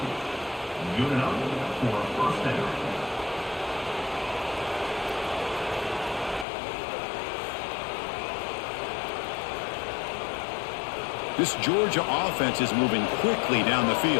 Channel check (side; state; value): right; drops out; at 6.5 s